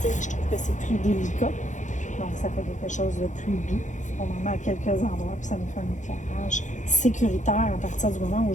Je trouve que c'est plus délicat. Donc, ça fait quelque chose de plus doux. On en met à quelques endroits, puis ça nous fait un éclairage sécuritaire à partir du moment où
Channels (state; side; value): late; right; 0.36 ms